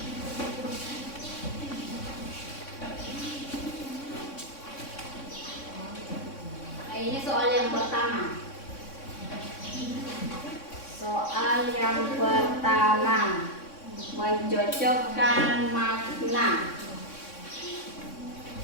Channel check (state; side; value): late; right; 3.6 ms